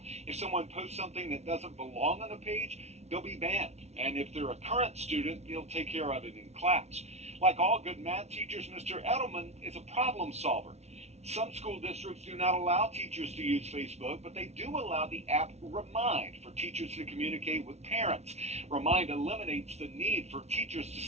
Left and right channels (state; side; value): late; left; 0.31 ms